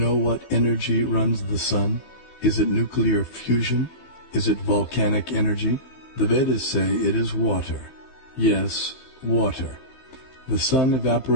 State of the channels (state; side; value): late; right; 15 ms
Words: what energy runs the Sun? Is it nuclear fusion? Is it volcanic energy? The Vedas say it is water. Yes, water. The sun